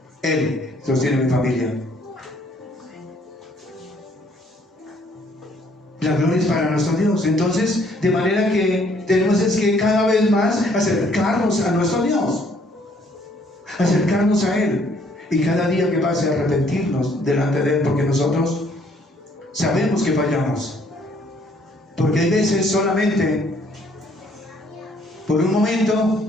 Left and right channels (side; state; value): both; normal; correlation 0.64